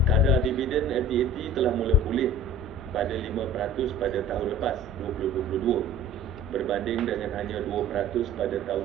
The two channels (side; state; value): both; normal; correlation 0.44